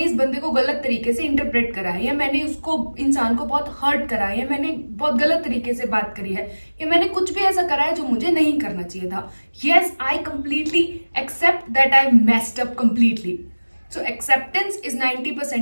इस बंदे को गलत तरीके से इंटरप्रेट करा है, या मैंने उसको इंसान को बहुत हर्ट करा है, या मैंने बहुत गलत तरीके से बात करी है, या मैंने कुछ भी ऐसा करा है जो मुझे नहीं करना चाहिए था। Yes, I completely accept that I messed up completely. So acceptance is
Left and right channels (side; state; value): both; inverted; correlation -1.00